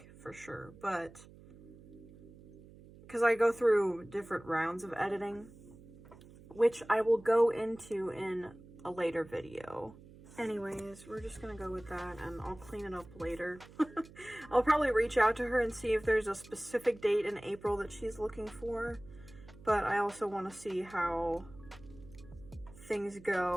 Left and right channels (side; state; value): right; noise; hum, 20 dB below the sound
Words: for sure. But because I go through different rounds of editing, which I will go into in a later video. Anyways, we're just gonna go with that, and I'll clean it up later. I'll probably reach out to her and see if there's a specific date in April that she's looking for, but I also want to see how things